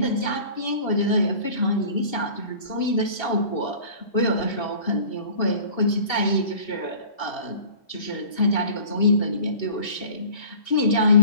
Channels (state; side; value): late; right; 2.7 ms